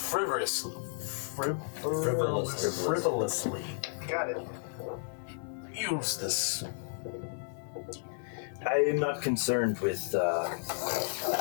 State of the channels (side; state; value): right; silent; 56 dB below the other